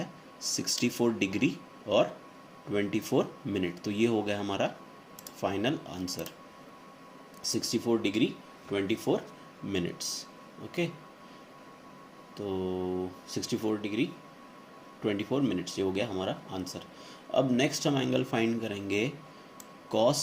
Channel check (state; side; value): identical; both; correlation 1.00